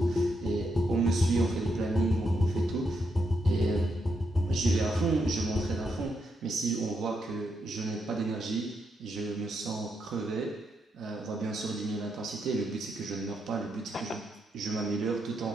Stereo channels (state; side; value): normal; both; correlation 0.81